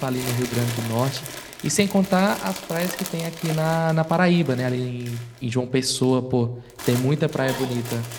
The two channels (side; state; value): both; identical; correlation 1.00